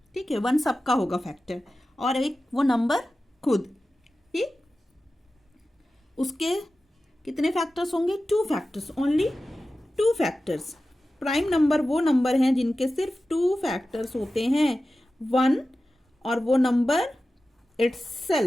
ठीक है, 1 सबका होगा फैक्टर, और एक वो नंबर खुद। ठीक, उसके कितने फैक्टर्स होंगे? 2 factors, only 2 factors. Prime number वो नंबर हैं जिनके सिर्फ 2 फैक्टर्स होते हैं, 1 और वो नंबर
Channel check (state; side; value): normal; both; correlation 0.94